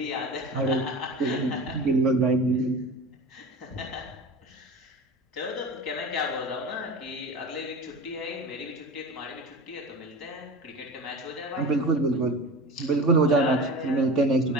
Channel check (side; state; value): both; normal; correlation 0.32